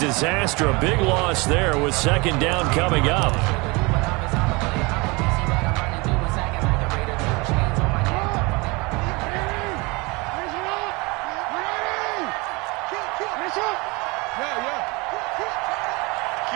A big loss there with 2nd down coming up.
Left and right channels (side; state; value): left; quieter; 26.4 dB